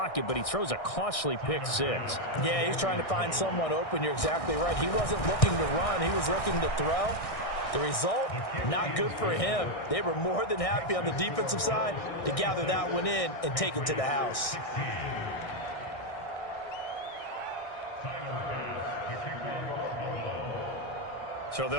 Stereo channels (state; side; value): late; right; 1.6 ms